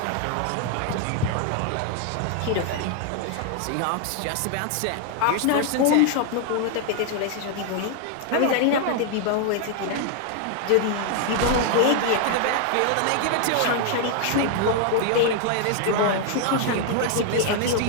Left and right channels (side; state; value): both; different; correlation 0.00